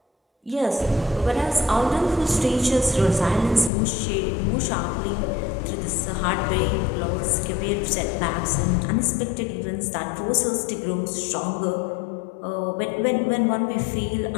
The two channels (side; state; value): right; drops out; at 3.7 s